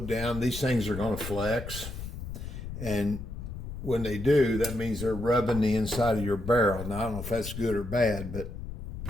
down, these things are going to flex. And when they do, that means they're rubbing the inside of your barrel. Now, I don't know if that's good or bad, but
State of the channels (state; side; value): noise; left; rumble, 8 dB below the sound